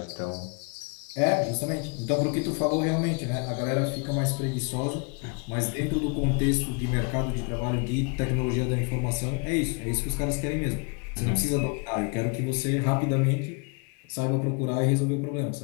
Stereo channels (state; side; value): quieter; right; 33.7 dB